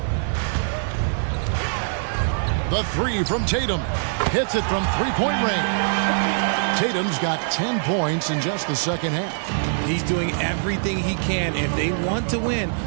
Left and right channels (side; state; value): left; silent; digital silence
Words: The three from Tatum. Hits it from three-point range. Tatum's got 10 points in just the second half. He's doing everything he can. If they want to win,